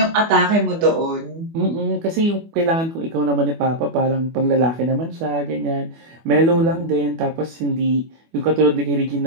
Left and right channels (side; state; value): left; late; 24 ms